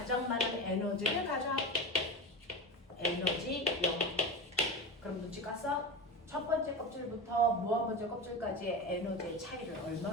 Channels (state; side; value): normal; both; correlation 0.25